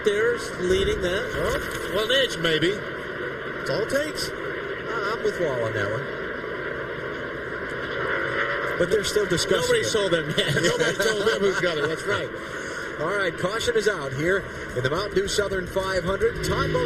there's leading that. Well, an inch maybe. That's all it takes. I'm with Wall on that one. But they're still discussing Nobody it. sold them yet. Nobody told them who's got it. That's right. All right, caution is out here in the Mountain Dew Southern 500. Todd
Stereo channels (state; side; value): identical; both; correlation 1.00